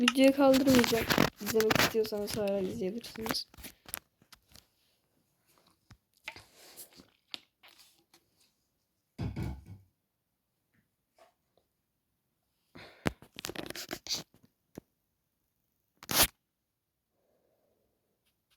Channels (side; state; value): both; identical; correlation 1.00